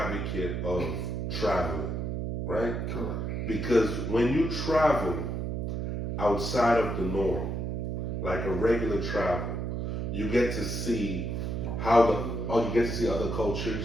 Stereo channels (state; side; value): noise; right; hum, 2 dB below the sound